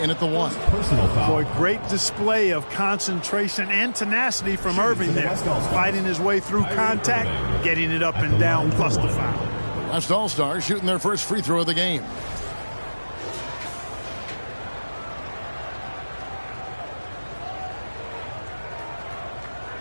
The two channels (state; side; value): inverted; both; correlation -1.00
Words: at the 1. Boy, great display of concentration and tenacity from Irving there. Fighting his way through contact, getting it up and down, plus the foul. West All-Stars shooting their first free throw of the game.